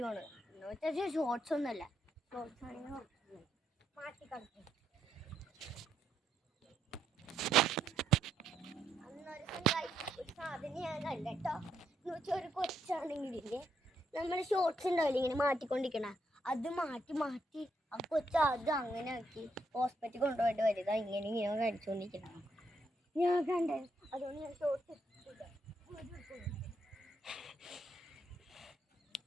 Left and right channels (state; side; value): normal; both; correlation 0.77